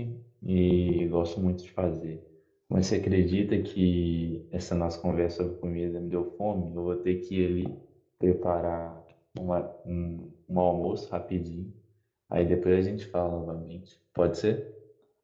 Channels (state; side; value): identical; both; correlation 1.00